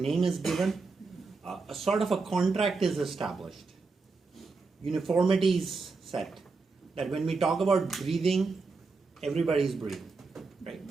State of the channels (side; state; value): left; quieter; 4.2 dB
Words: name is given, a sort of a contract is established. Uniformity is set. That when we talk about breathing, everybody's breathing, right?